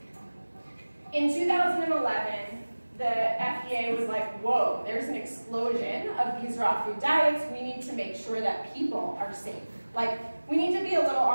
in 2011, the FDA was like, whoa, there's an explosion of these raw food diets. We need to make sure that people are safe. Like, we need to be a little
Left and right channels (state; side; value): inverted; both; correlation -1.00